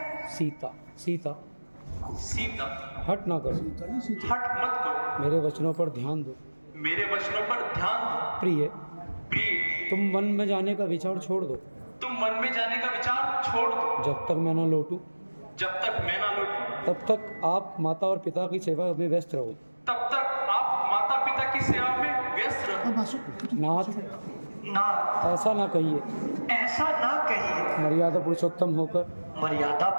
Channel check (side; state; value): both; inverted; correlation -1.00